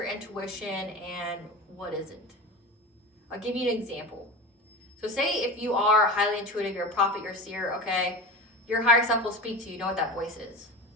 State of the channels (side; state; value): both; normal; correlation 0.30